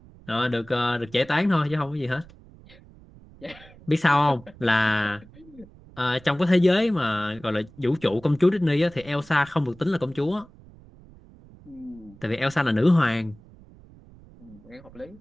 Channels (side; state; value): right; noise; rumble, 23 dB below the sound